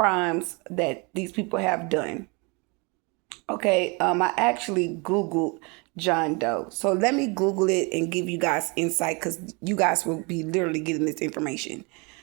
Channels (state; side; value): quieter; left; 29.9 dB